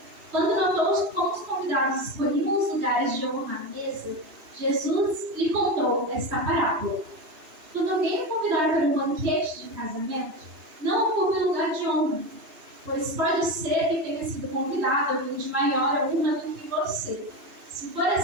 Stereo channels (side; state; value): left; late; 2.9 ms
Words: Quando notou como os convidados escolhiam os lugares de honra à mesa, Jesus lhe contou esta parábola: quando alguém o convidar para um banquete de casamento, não ocupe lugar de honra, pois pode ser que tenha sido convidado alguém de maior honra do que você. Se for